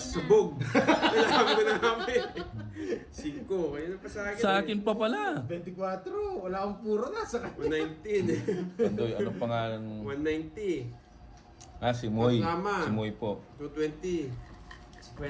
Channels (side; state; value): both; identical; correlation 1.00